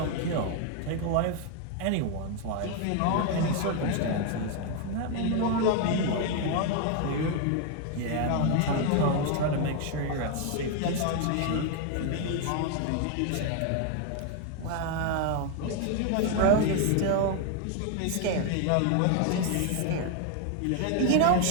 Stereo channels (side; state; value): both; different; correlation 0.01